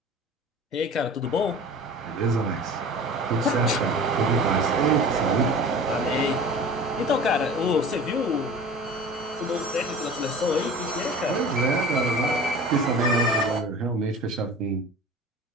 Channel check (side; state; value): both; normal; correlation 0.39